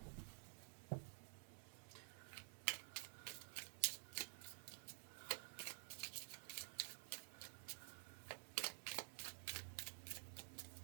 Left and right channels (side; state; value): left; silent; digital silence